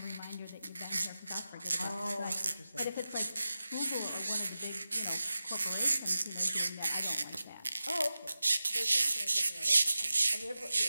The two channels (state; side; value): inverted; both; correlation -0.94